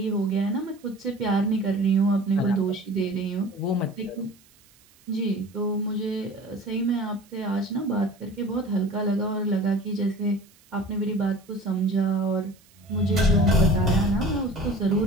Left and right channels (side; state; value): right; noise; hiss, 29 dB below the sound